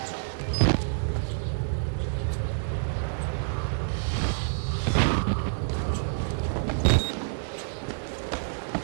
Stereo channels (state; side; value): silent; left; digital silence